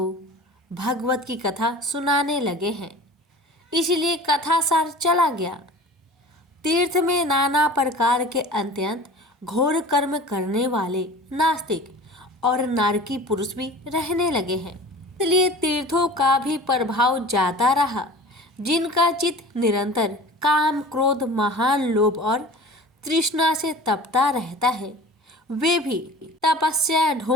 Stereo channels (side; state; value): both; normal; correlation 0.40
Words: भगवत की कथा सुनाने लगे हैं, इसलिए कथा सार चला गया। तीर्थ में नाना प्रकार के अत्यंत घोर कर्म करने वाले नास्तिक और नारकी पुरुष भी रहने लगे हैं, इसलिए तीर्थों का भी प्रभाव जाता रहा। जिनका चित्त निरंतर काम, क्रोध, महान लोभ और तृष्णा से तपता रहता है, वे भी तपस्या